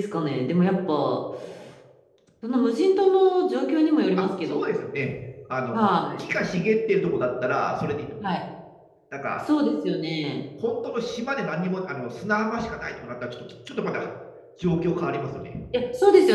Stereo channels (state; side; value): identical; both; correlation 1.00